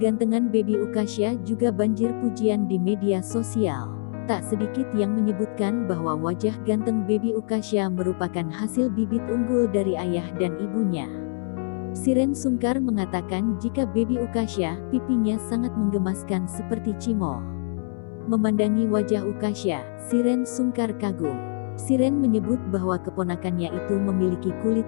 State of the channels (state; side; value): silent; right; 61 dB below the other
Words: Baby Ukasha juga banjir pujian di media sosial. Tak sedikit yang menyebutkan bahwa wajah ganteng Baby Ukasha merupakan hasil bibit unggul dari ayah dan ibunya. Shireen Sungkar mengatakan jika Baby Ukasha, pipinya sangat menggemaskan seperti cimol. Memandangi wajah Ukasha, Shireen Sungkar kagum. Shireen menyebut bahwa keponakannya itu memiliki kulit